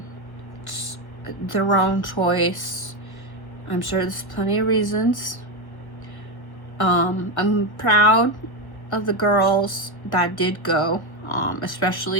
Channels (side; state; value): right; late; 1.1 ms